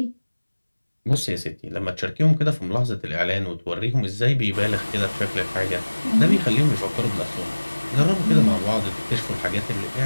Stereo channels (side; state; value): both; inverted; correlation -1.00